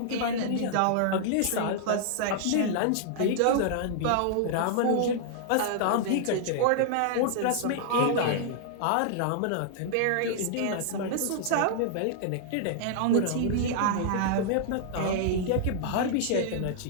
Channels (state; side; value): different; both; correlation -0.01